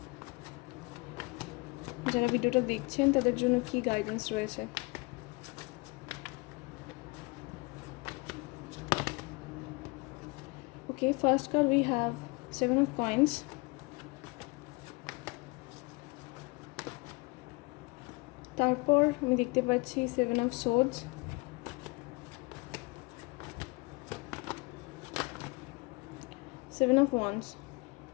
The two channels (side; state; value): right; quieter; 27.1 dB